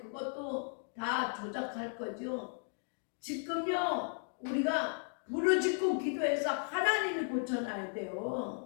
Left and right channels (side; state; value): right; silent; 54 dB below the other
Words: 다 조작할 거죠. 지금요 우리가 부르짖고 기도해서 하나님이 고쳐놔야